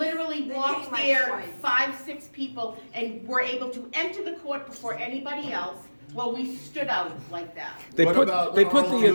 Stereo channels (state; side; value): inverted; both; correlation -1.00